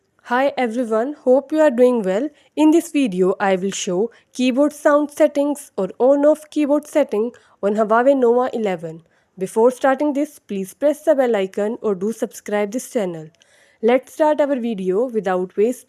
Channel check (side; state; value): both; identical; correlation 1.00